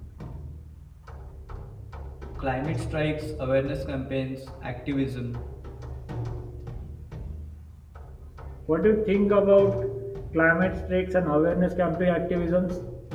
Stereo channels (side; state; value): both; identical; correlation 1.00